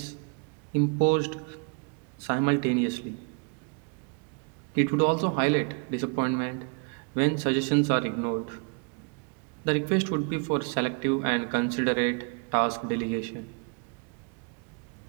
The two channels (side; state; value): left; quieter; 36.5 dB